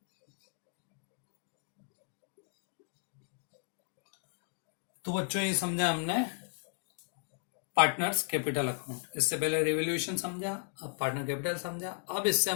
तो बच्चों ये समझा हमने पार्टनर्स कैपिटल अकाउंट। इससे पहले रिवोल्यूशन समझा, अब पार्टनर कैपिटल समझा। अब इससे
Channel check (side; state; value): right; silent; 54 dB below the other